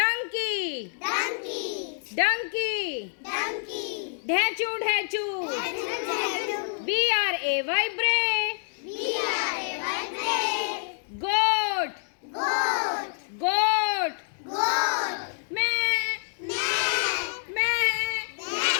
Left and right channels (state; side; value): silent; right; digital silence